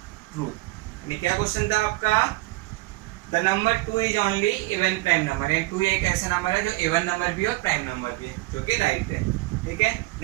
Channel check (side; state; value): left; quieter; 20.8 dB